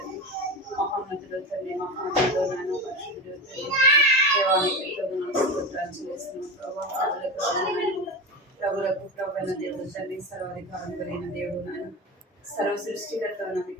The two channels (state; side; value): normal; both; correlation 0.23